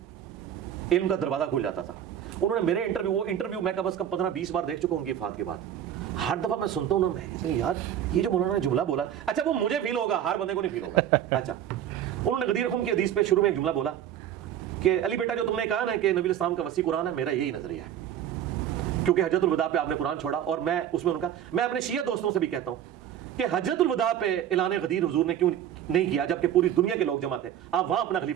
علم کا دروازہ کھل جاتا تھا۔ انہوں نے میرے انٹرویو میں کم از کم 15-20 بار دیکھ چکا ہوں گی وفات کے بعد، ہر دفعہ میں سنتا ہوں نا، میں کہتا ہوں یار یہ جو مولانا نے جملہ بولا، اچھا وہ مجھے فیل ہوگا، ہر بندے کو نہیں فیل ہوگا۔ اچھا، انہوں نے غدیر خم کی حدیث پہ شروع میں ایک جملہ بولا کہ علی بیٹا جو تم نے کہا نا کہ نبی علیہ السلام کا وسیع قرآن ہے، میرا یہی نظریہ ہے، کیونکہ حجۃ الوداع پہ آپ نے قرآن چھوڑا، اور میں اس میں ان کا، میں اپنے شیعہ دوستوں سے بھی کہتا ہوں کہ حجۃ الوداع پہ اعلان غدیر حضور نے کیوں نہیں کیا، جبکہ پوری دنیا کے لوگ جمع تھے، آپ وہاں اپنا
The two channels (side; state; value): left; quieter; 10.3 dB